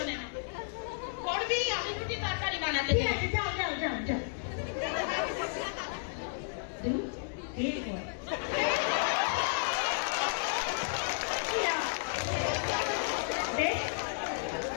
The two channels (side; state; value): right; silent; digital silence